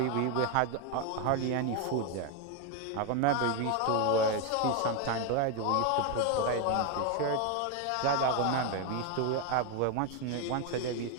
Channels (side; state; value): both; different; correlation 0.01